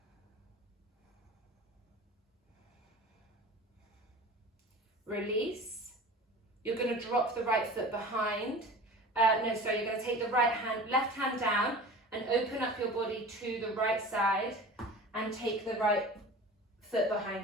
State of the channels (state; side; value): normal; both; correlation 0.38